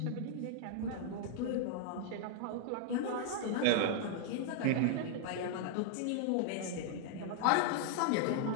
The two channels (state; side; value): different; both; correlation -0.01